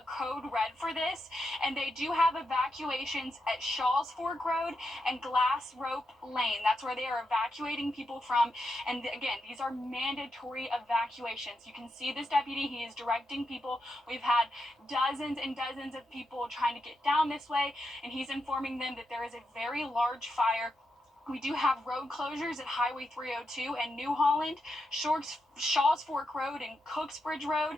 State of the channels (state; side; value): normal; both; correlation 0.85